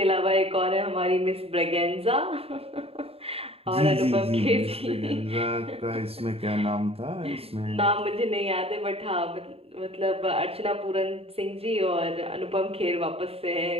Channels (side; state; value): left; late; 0.28 ms